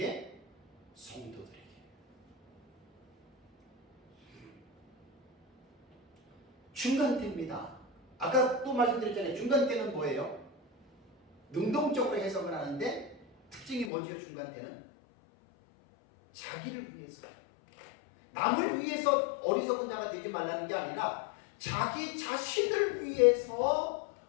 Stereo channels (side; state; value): right; drops out; at 13.9 s